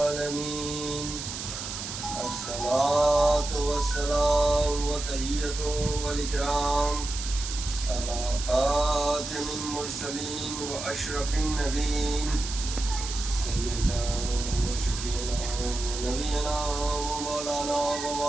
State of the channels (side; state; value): right; noise; hiss, 7 dB below the sound